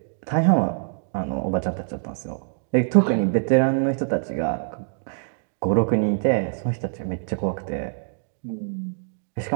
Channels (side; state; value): left; silent; digital silence